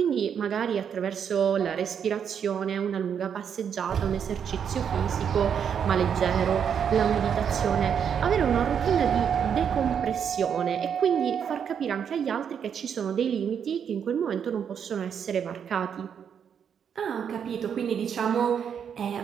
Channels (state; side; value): quieter; left; 7.8 dB